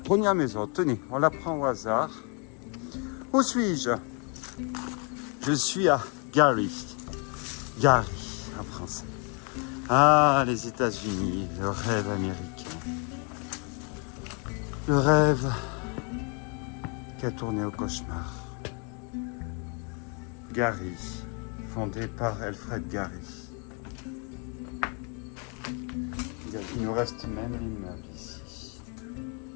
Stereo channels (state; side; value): quieter; right; 36.8 dB